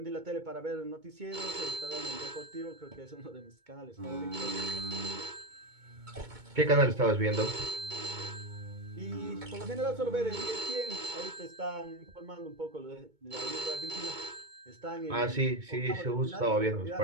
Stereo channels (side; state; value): left; late; 2.2 ms